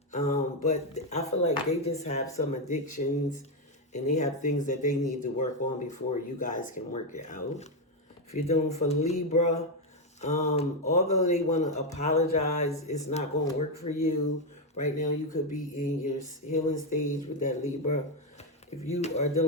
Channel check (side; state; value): both; normal; correlation 0.05